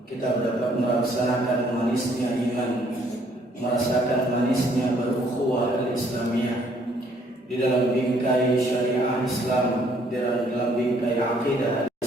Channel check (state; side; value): normal; both; correlation 0.65